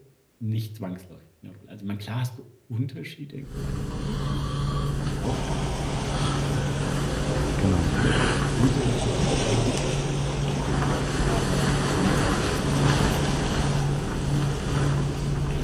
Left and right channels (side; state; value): both; identical; correlation 1.00